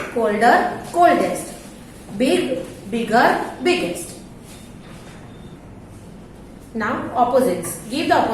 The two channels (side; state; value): both; identical; correlation 1.00